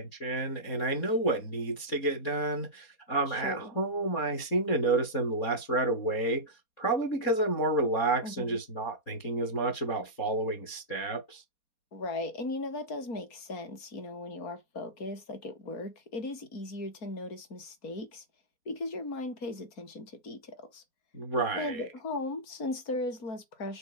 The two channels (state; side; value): late; right; 4.2 ms